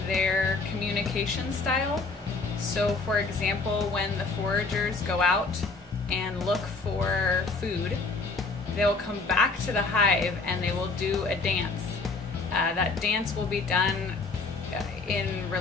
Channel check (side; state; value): right; quieter; 3.9 dB